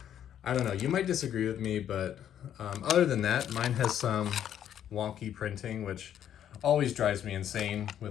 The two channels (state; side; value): quieter; right; 10.1 dB